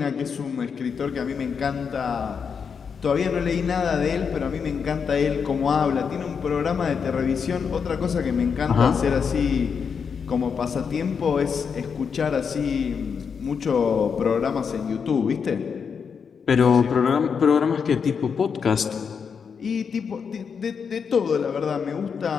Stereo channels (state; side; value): quieter; right; 6.3 dB